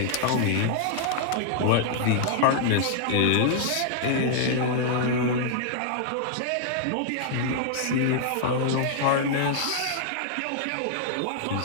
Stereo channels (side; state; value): both; different; correlation -0.01